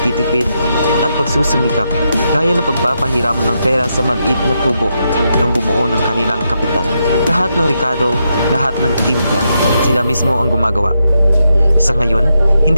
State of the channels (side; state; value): both; inverted; correlation -0.83